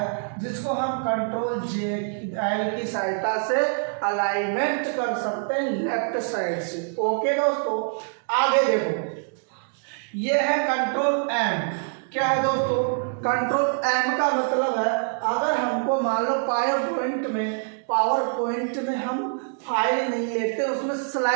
जिसको हम कंट्रोल जे एल की सहायता से अलाइनमेंट कर सकते हैं लेफ्ट साइड से। ओके दोस्तों, आगे देखो, ये है कंट्रोल एम। क्या है दोस्तों, कंट्रोल एम का मतलब है, अगर हमको मान लो पावर पॉइंट में हम फाइल नहीं लेते, उसमें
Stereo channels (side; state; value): left; silent; 62 dB below the other